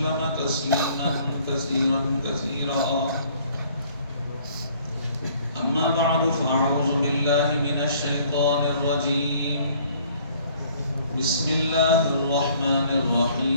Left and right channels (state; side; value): inverted; both; correlation -0.58